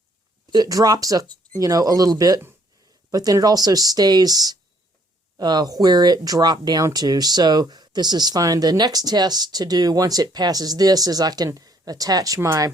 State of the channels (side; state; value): both; normal; correlation 0.65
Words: it drops a little bit, but then it also stays where it dropped down to. So this is fine. The next test to do once it passes this is I can attach my